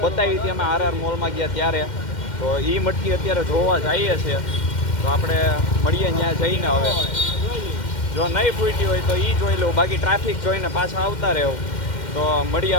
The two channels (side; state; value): right; late; 2.1 ms